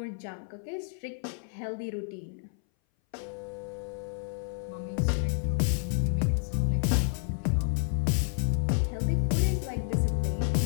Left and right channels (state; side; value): silent; right; 58 dB below the other